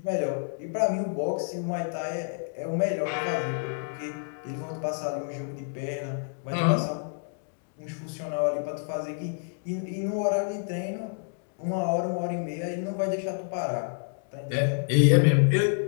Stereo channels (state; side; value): silent; right; digital silence